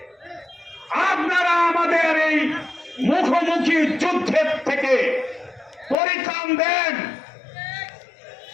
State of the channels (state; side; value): drops out; right; at 6.0 s